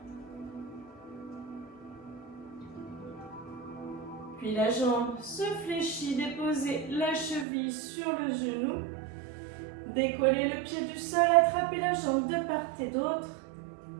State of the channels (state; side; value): drops out; left; at 7.5 s